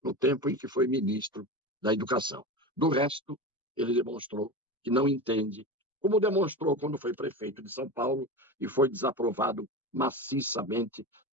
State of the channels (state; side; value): normal; both; correlation 0.25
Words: no tempo em que foi ministro da Educação. Do resto, ele demonstrou que não entende, como demonstrou quando foi prefeito de São Paulo e foi desaprovado maciçamente,